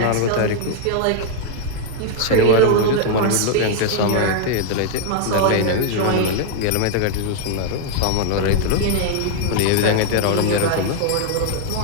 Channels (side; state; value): both; different; correlation 0.00